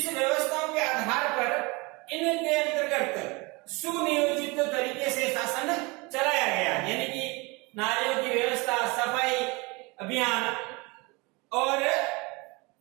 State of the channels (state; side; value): quieter; left; 26.3 dB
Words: व्यवस्थाओं के आधार पर इनके अंतर्गत सुनियोजित तरीके से शासन चलाया गया। यानी कि नालियों की व्यवस्था, सफाई अभियान और